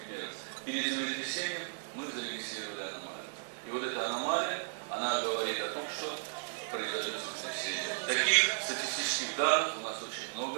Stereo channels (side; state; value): left; silent; digital silence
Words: Перед землетрясением мы зарегистрировали аномалию. И вот эта аномалия, она говорит о том, что произойдет землетрясение. Таких статистических данных у нас очень